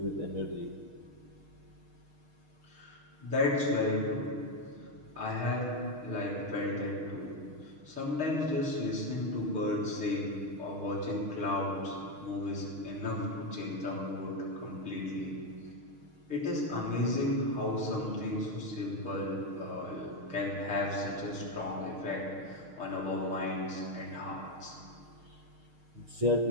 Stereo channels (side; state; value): left; late; 6.5 ms